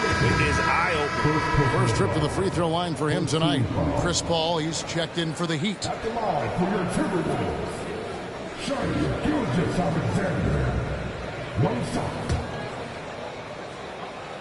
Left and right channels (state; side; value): identical; both; correlation 1.00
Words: eye-opening. First trip to the free throw line for him tonight. Chris Paul, he's checked in for the Heat. At the line for your Timberwolves, Shai Gilgeous-Alexander. One shot.